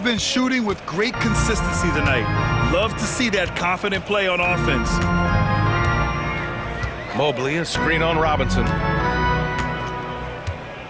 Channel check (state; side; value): identical; both; correlation 1.00